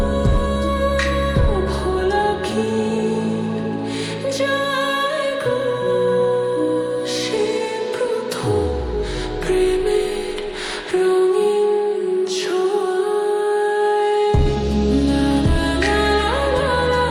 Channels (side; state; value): both; identical; correlation 1.00